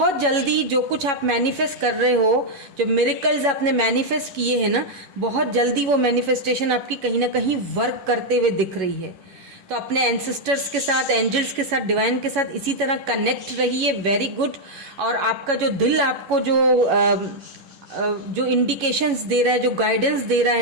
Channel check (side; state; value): left; late; 11 ms